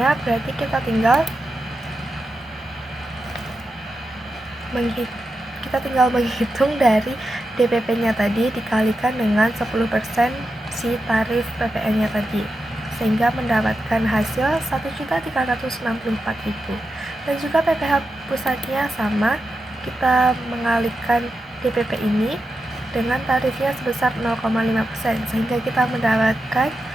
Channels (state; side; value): normal; both; correlation 0.88